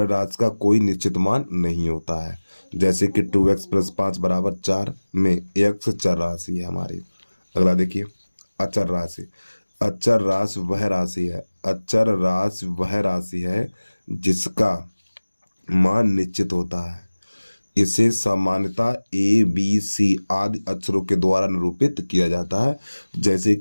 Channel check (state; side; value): inverted; both; correlation -1.00